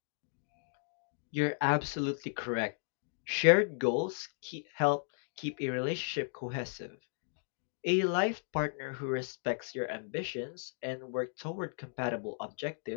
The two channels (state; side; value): silent; right; digital silence